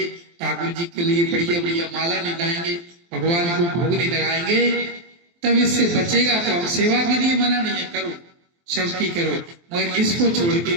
ठाकुर जी के लिए बढ़िया बढ़िया माला नहीं लाएंगे, भगवान को भोग नहीं लगाएंगे, तब इससे बचेगा। तो हम सेवा के लिए मना नहीं है, करो सबकी करो, मगर इसको छोड़ के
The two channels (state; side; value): late; left; 23 ms